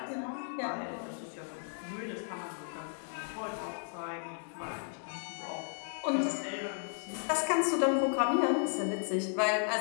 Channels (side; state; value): right; silent; 55 dB below the other